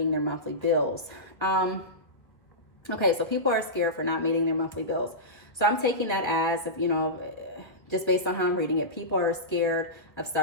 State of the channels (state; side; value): late; right; 1.1 ms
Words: their monthly bills." Okay, so people are scared for not meeting their monthly bills. So I'm taking that as, just based on how I'm reading it, people are scared of